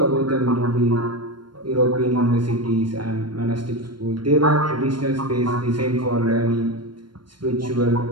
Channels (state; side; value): late; left; 0.72 ms